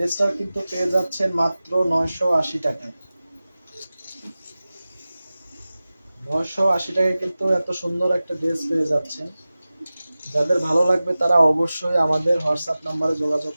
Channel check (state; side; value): inverted; both; correlation -0.96